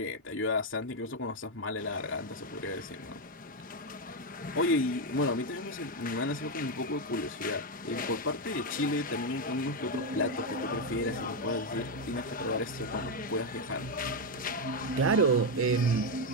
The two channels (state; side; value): normal; both; correlation 0.05